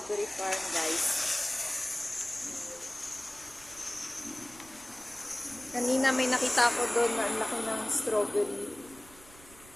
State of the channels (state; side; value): noise; right; rumble, 22 dB below the sound